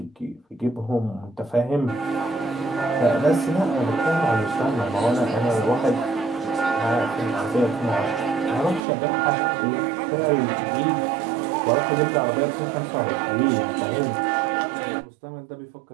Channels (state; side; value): drops out; left; at 8.8 s